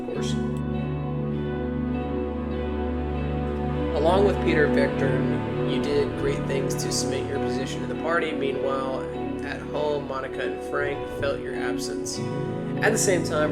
course. Along with Peter Vectern, you did great things to cement your position in the party. Meanwhile, at home, Monica and Frank felt your absence. At the same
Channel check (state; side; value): identical; both; correlation 1.00